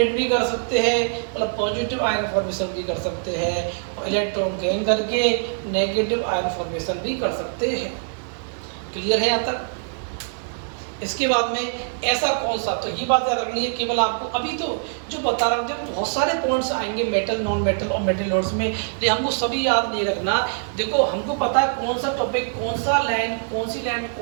भी कर सकते हैं, मतलब पॉजिटिव आयन फॉर्मेशन भी कर सकते हैं, और इलेक्ट्रॉन गेन करके नेगेटिव आयन फॉर्मेशन भी कर सकते हैं। क्लियर है यहाँ तक? इसके बाद में ऐसा कौन सा, तो ये बात याद रखनी है केवल आपको। अभी तो जो बता रहा हूँ जब बहुत सारे पॉइंट्स आएंगे मेटल, नॉन मेटल और मेटल लोड्स में, लेकिन हमको सभी याद नहीं रखना। देखो हमको पता है कौन सा टॉपिक, कौन सा लाइन, कौन सी लाइन,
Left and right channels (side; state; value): left; silent; digital silence